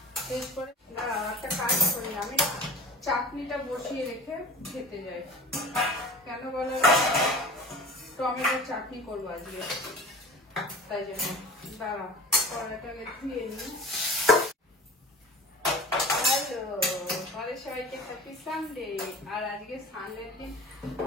শেষ করে একটা কাজ করি, আমি চাটনিটা বসিয়ে রেখে খেতে যাই। কেন বলো, টমেটোর চাটনি করবো আজকে, তাই জন্য দাঁড়া কড়াটাকে ধুয়ে নিই। হ্যালো, আমাদের সবাইকে হ্যাপি সানডে। আর আজকে সানডের দিন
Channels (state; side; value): normal; both; correlation 0.41